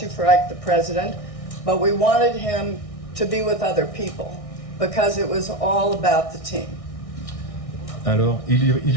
for Ike the President, but we wanted him to be with other people because it was all about the team. Alors,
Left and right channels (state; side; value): late; right; 1.6 ms